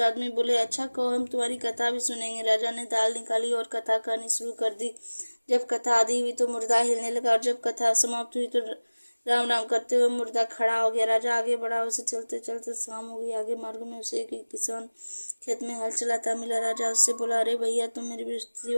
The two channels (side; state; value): both; inverted; correlation -1.00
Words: आदमी बोले, अच्छा कहो, हम तुम्हारी कथा भी सुनेंगे। राजा ने दाल निकाली और कथा कहनी शुरू कर दी। जब कथा आदि हुई तो मुर्दा हिलने लगा और जब कथा समाप्त हुई तो राम राम करते हुए मुर्दा खड़ा हो गया। राजा आगे बढ़ा। उसे चलते चलते शाम हो गई। आगे मार्ग में उसे एक किसान खेत में हल चलाता मिला। राजा उससे बोला, अरे भैया, तुम मेरी